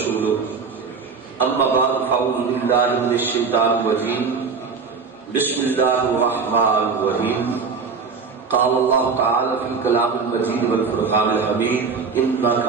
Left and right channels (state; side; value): quieter; left; 5.2 dB